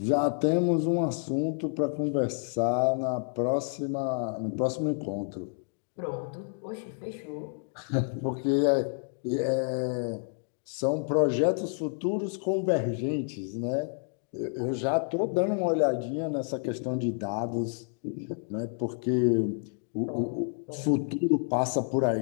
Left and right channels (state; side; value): silent; right; 58 dB below the other